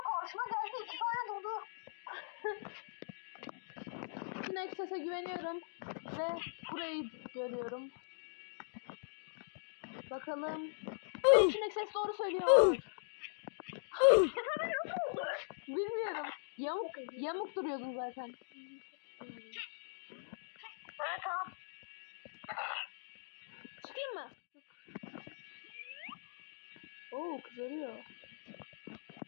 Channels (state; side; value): silent; right; digital silence